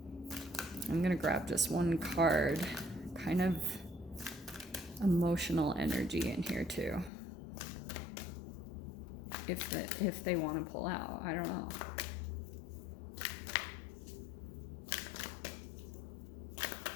I'm gonna grab just 1 card, kind of emotional energy in here too. If they want to pull out, I don't know.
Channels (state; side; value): drops out; right; at 7.1 s